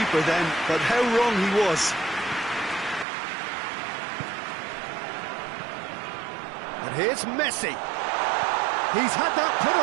then, but how wrong he was. And here's Messi. He's had that put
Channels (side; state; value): left; drops out; at 3.1 s